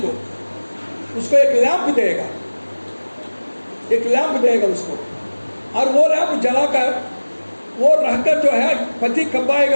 उसको एक लैंप देगा उसको, और वो लैंप जलाकर वो रहकर जो है पति कब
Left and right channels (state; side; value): inverted; both; correlation -1.00